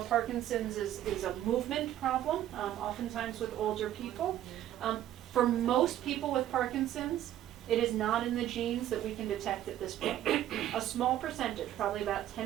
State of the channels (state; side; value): quieter; left; 12.3 dB